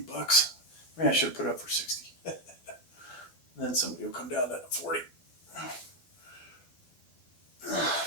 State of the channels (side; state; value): right; late; 12 ms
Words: Maybe I should have put it up for 60. And then somebody will come down to 40.